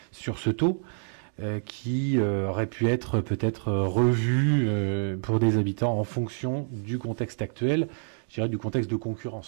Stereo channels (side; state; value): left; silent; digital silence